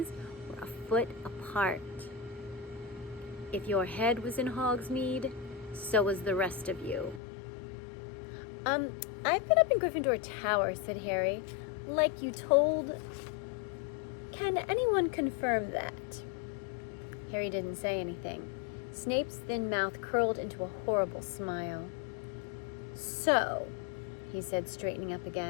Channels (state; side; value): drops out; right; at 7.2 s